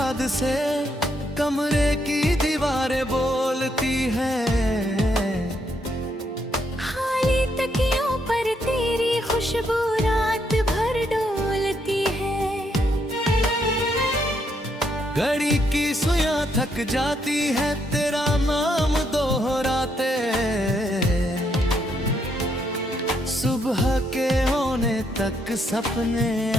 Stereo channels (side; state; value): both; normal; correlation 0.75